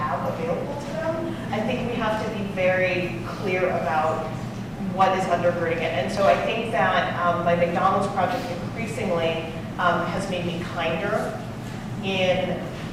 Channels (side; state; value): both; identical; correlation 1.00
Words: available to them, I think we have to be very clear about what is undergirding it. And so I think that my McDonald's project increasingly has made me kinder in